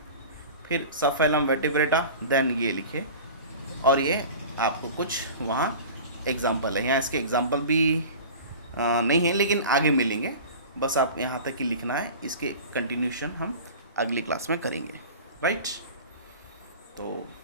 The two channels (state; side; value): inverted; both; correlation -0.37